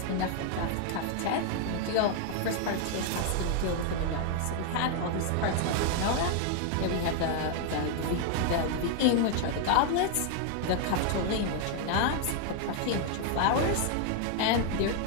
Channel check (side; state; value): both; different; correlation 0.00